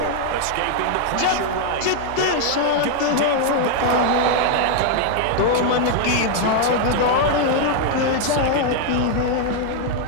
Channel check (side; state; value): both; different; correlation 0.00